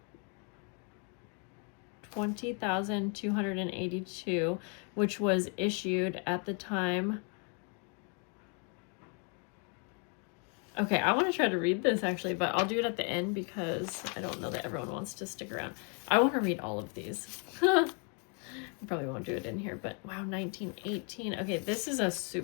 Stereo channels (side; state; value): right; quieter; 38.1 dB